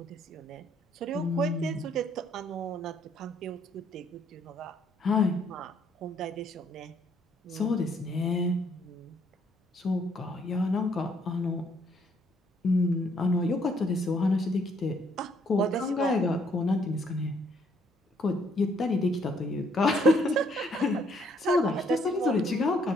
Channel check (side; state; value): both; normal; correlation 0.68